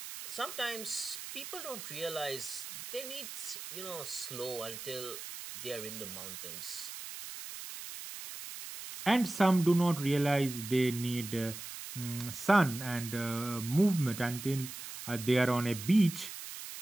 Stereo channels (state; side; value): noise; right; hiss, 10 dB below the sound